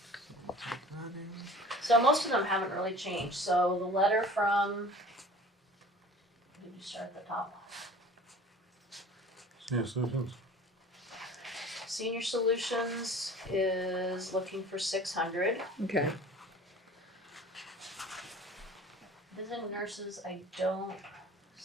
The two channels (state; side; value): normal; both; correlation 0.43